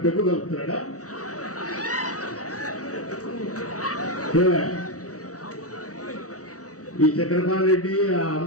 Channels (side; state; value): right; late; 0.66 ms